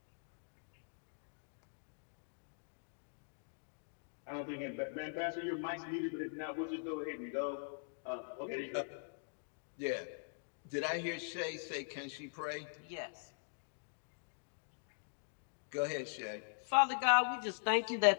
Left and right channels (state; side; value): silent; right; digital silence